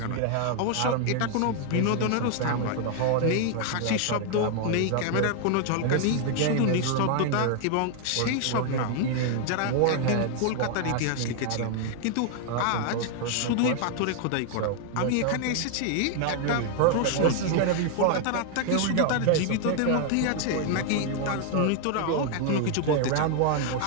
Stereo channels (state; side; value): different; both; correlation 0.00